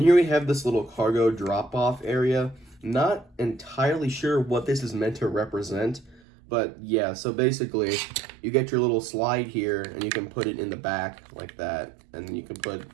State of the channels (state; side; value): drops out; left; at 6.2 s